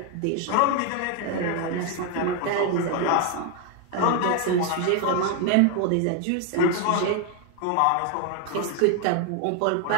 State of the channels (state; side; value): different; both; correlation 0.01